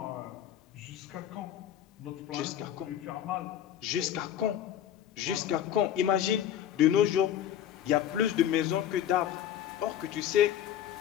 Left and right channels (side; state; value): right; quieter; 10.6 dB